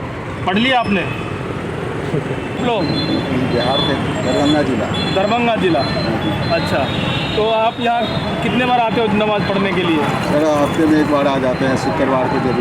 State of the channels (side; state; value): both; identical; correlation 1.00